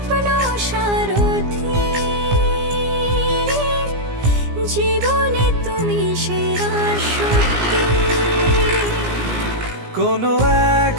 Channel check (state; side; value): late; left; 17 ms